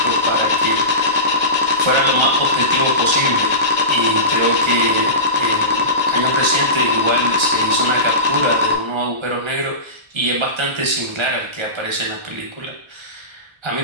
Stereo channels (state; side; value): late; left; 1.3 ms